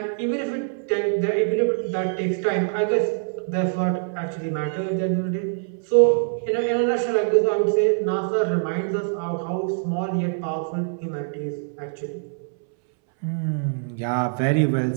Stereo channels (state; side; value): silent; left; 63 dB below the other